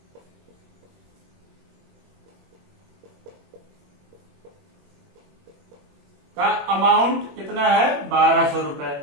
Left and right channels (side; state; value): left; late; 21 ms